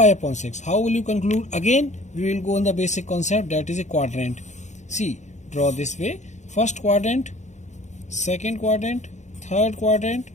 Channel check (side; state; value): right; late; 0.34 ms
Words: upon 6. How will you conclude? Again we will go on the basic concept, that is a quadrant. See, draw this way. First quadrant, second quadrant, third quadrant